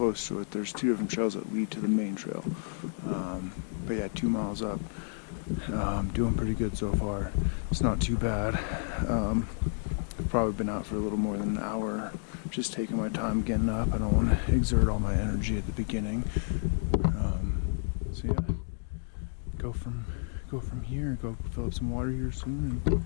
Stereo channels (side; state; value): right; silent; 57 dB below the other